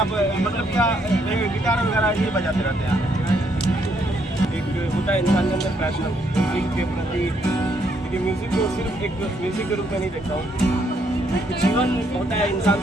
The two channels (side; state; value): both; normal; correlation 0.72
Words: मतलब क्या गिटार वगैरह ये बजाते रहते हैं? एक होता है इंसान के अंदर पैशन म्यूजिक के प्रति, क्योंकि म्यूजिक को सिर्फ एक म्यूजिक के रूप में नहीं देखता हूँ, जीवन होता है इंसान